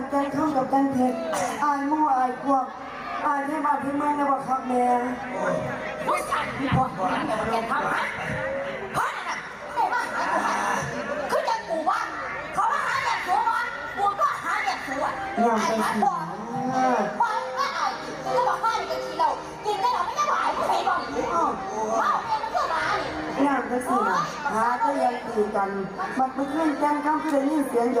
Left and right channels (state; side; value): identical; both; correlation 1.00